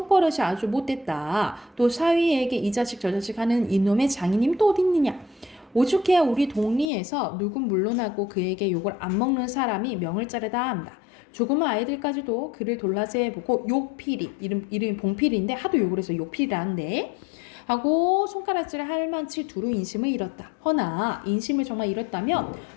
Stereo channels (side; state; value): right; drops out; at 6.9 s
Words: 아주 못됐다. 또 사위에게 이 자식 저 자식 하는 이놈의 장인님 또 어디 있느냐. 오죽해야 우리 동리에서 누군 물러나고 그에게 욕을 안 먹는 사람이 명을 자르다 한다. 조그만 아이들까지도 그를 돌라세보고 욕필이 이름이 봉필인데 하도 욕을 해서 욕필이라는데 하고 손가락질을 할 만치 두루 인심을 잃었다. 허나 인심을 정말 잃었다면